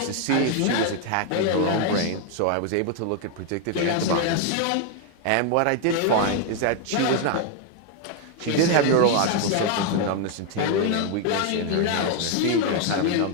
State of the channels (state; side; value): different; both; correlation 0.01